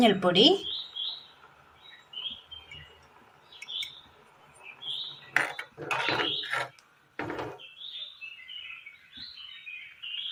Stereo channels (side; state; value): both; identical; correlation 1.00